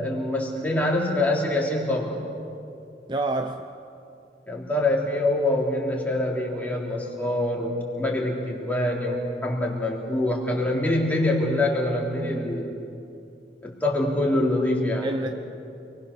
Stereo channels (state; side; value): normal; both; correlation 0.63